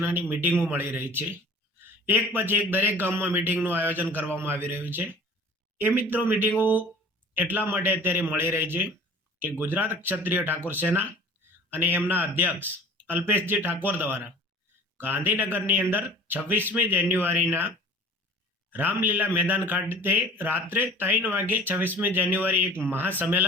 મિટિંગો મળી રહી છે. એક પછી એક દરેક ગામમાં મિટિંગનું આયોજન કરવામાં આવી રહ્યું છે. એ મિત્રો મિટિંગો એટલા માટે અત્યારે મળી રહી છે કે ગુજરાત ક્ષત્રિય ઠાકોર સેના અને એમના અધ્યક્ષ અલ્પેશજી ઠાકોર દ્વારા ગાંધીનગરની અંદર 26મી જાન્યુઆરીના રામલીલા મેદાન ખાતે રાત્રે 3 વાગે 26મી જાન્યુઆરી એક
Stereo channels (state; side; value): normal; both; correlation 0.45